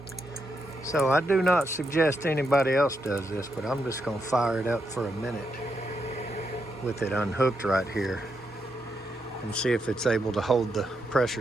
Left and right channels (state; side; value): normal; both; correlation 0.82